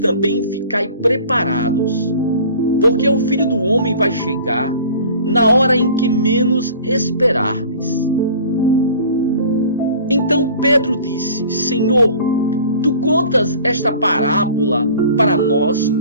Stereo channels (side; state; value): both; inverted; correlation -0.45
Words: ficai preparados, porque o Filho do Homem vai chegar na hora em que menos esperardes. Então Pedro disse: Senhor, tu contas esta parábola para nós